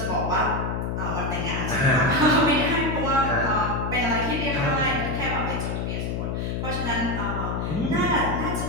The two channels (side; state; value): left; noise; hum, 2 dB below the sound